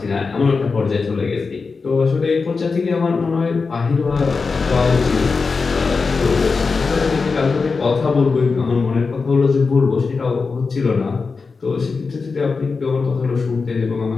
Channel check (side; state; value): right; quieter; 4.6 dB